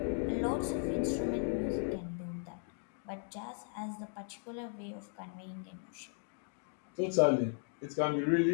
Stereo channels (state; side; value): silent; right; 53 dB below the other